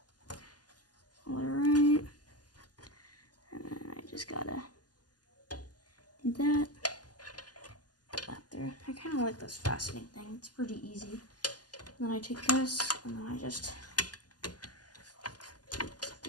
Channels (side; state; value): right; late; 0.69 ms